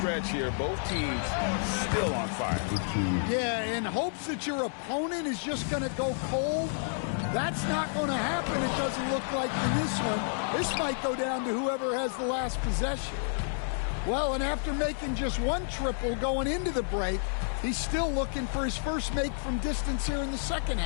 here, both teams still on fire. Yeah, in hopes that your opponent is just going to go cold. That's not going to happen, it doesn't look like in this one. This might go down to whoever has the last possession. Well, and after making just 1 triple going into the break, he's still looking for his first make from distance here in the second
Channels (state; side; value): silent; right; 58 dB below the other